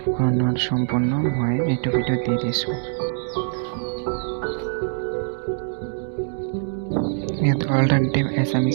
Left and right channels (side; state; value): left; silent; digital silence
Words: সম্পূৰ্ণ মই এইটো ভিডিঅ'ত দি দিছোঁ। ইয়াত অল্টাৰনেটিভ